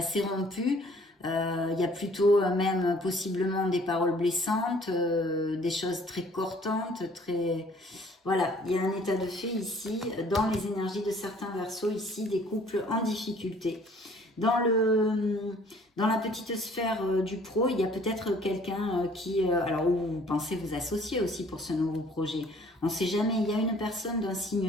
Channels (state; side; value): normal; both; correlation 0.56